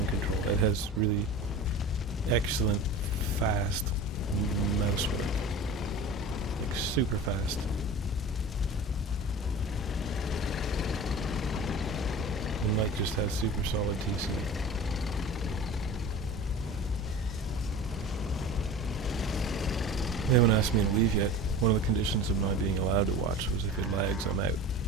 control. Ed has really excellent, fast mouse work. Like, super fast. And Mike just has super solid TC. They haven't asked me to leave yet. One of the conditions of my being allowed to watch was if it lags, I'm out.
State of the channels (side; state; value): both; normal; correlation 0.36